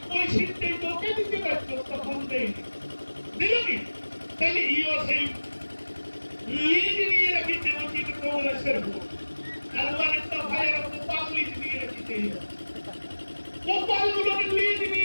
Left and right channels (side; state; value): both; inverted; correlation -1.00